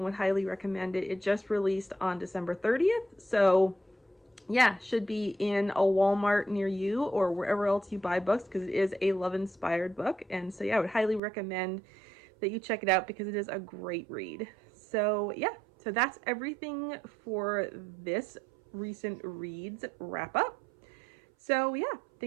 would highly recommend it. It just released on December 30th, so yeah, should be in a Walmart near you or wherever else you buy books, because it is a love-inspired book. And so yeah, I would highly recommend that you check it out because it is a great read. So yeah, so that's everything for this recent reads wrap up. So yeah,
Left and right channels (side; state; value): left; drops out; at 11.2 s